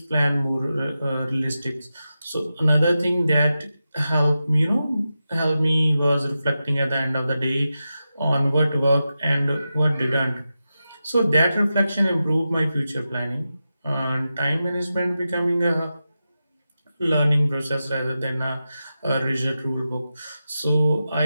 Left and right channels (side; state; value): both; inverted; correlation -0.91